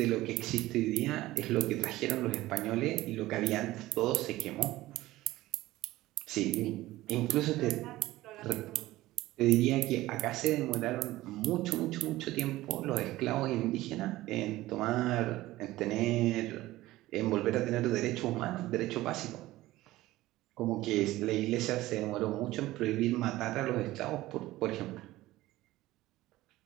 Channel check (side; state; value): left; quieter; 17.0 dB